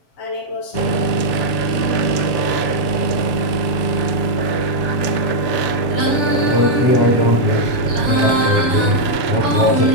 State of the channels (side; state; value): right; late; 6.9 ms